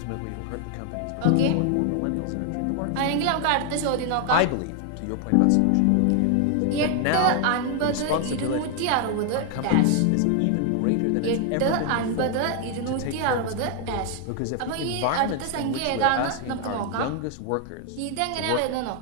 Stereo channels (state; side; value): different; both; correlation 0.00